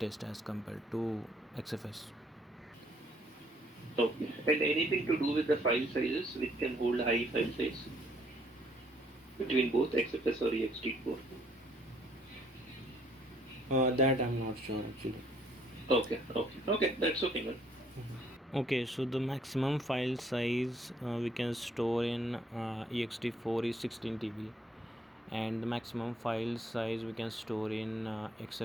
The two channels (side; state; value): both; normal; correlation 0.65